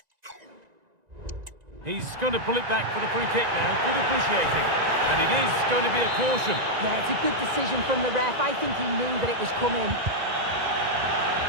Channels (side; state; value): left; late; 1.9 ms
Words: He's going to pull it back for the free kick now. Good officiating. And it is going to be a caution. Yeah, it's a good decision from the ref. I think he knew that it was coming.